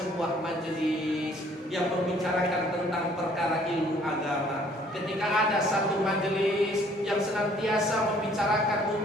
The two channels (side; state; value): both; normal; correlation 0.59